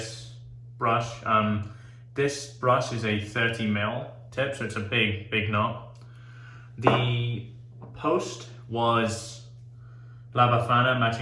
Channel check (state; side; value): identical; both; correlation 1.00